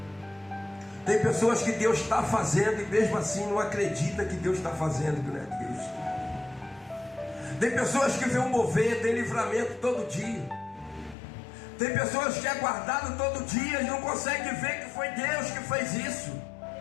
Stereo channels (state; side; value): drops out; right; at 11.2 s